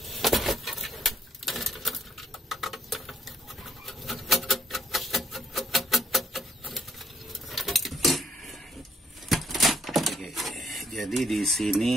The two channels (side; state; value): both; normal; correlation 0.67